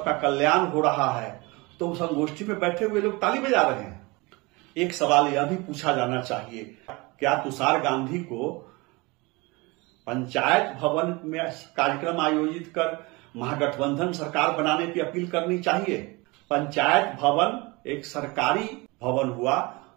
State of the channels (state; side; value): quieter; left; 25.0 dB